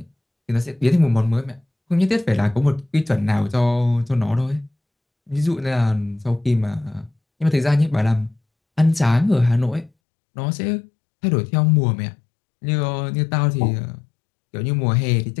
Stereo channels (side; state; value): right; drops out; at 9.9 s